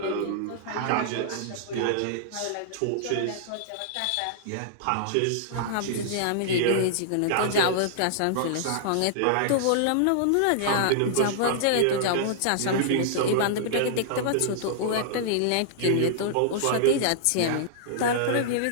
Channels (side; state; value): both; different; correlation -0.01